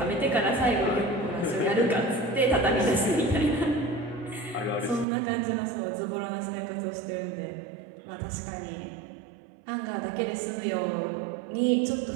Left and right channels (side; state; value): left; drops out; at 5.1 s